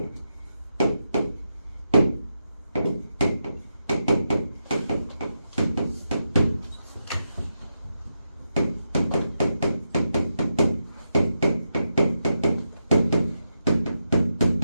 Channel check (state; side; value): inverted; both; correlation -0.86